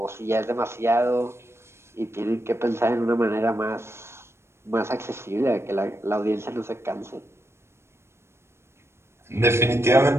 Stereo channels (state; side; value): late; left; 0.13 ms